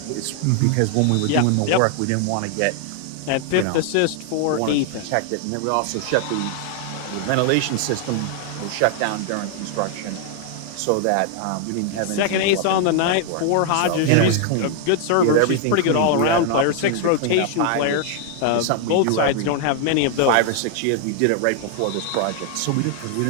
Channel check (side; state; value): both; different; correlation 0.00